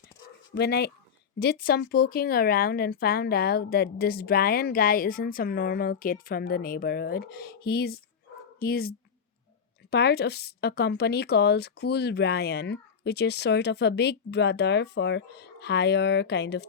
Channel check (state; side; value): quieter; right; 6.7 dB